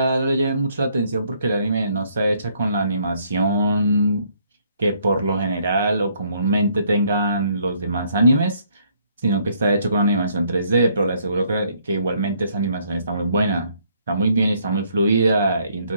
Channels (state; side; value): inverted; both; correlation -0.67